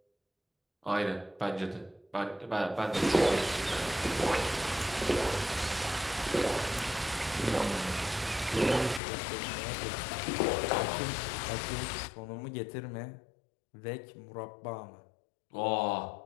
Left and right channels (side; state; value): right; drops out; at 9.0 s